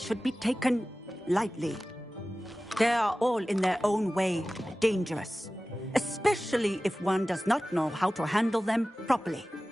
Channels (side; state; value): both; normal; correlation 0.96